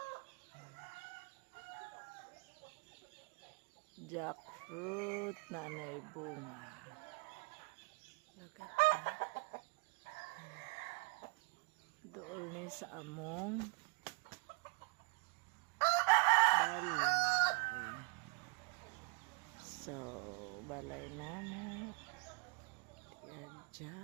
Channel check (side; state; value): left; quieter; 30.5 dB